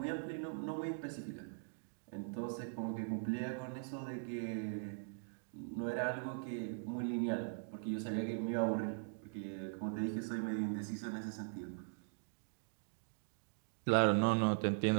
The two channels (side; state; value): left; silent; digital silence